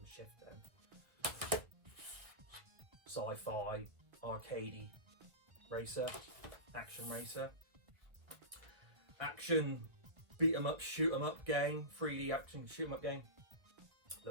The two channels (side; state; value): left; late; 2.0 ms